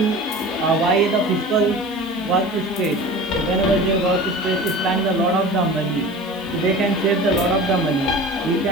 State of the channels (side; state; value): right; noise; hiss, 26 dB below the sound